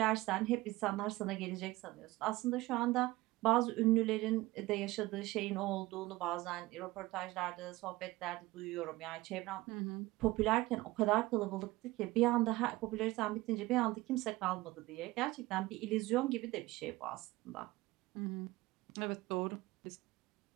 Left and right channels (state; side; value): quieter; left; 19.4 dB